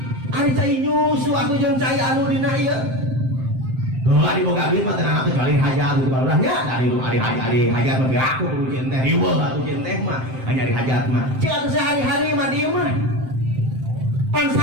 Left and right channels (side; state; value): left; late; 7.7 ms